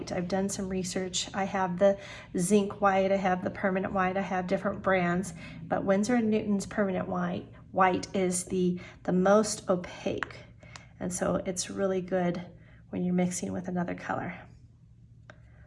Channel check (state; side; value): identical; both; correlation 1.00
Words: I've done some research. I have the zinc white, I have the permanent white, I have different brands, but Winsor & Newton's permanent white is the most opaque. And so it's really good when you're mixing with another color.